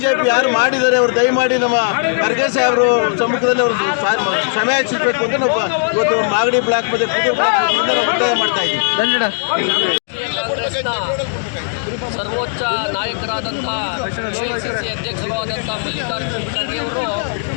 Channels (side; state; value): right; silent; digital silence